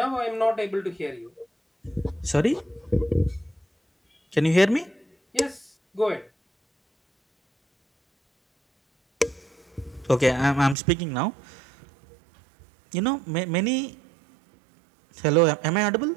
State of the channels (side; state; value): left; drops out; at 10.8 s